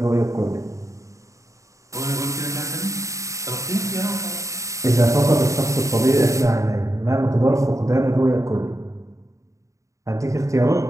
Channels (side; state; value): left; late; 0.15 ms